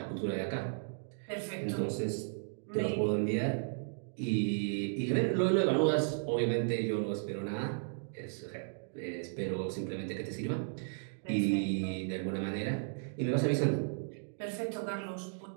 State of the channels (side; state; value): left; silent; digital silence